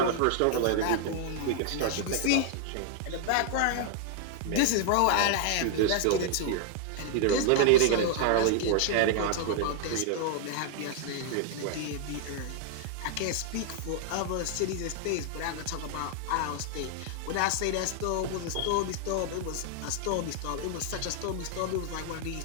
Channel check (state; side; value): different; both; correlation 0.00